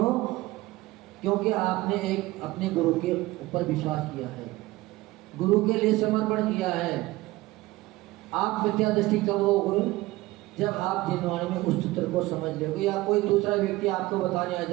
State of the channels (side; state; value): left; quieter; 19.0 dB